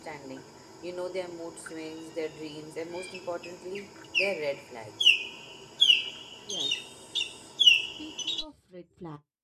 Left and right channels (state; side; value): identical; both; correlation 1.00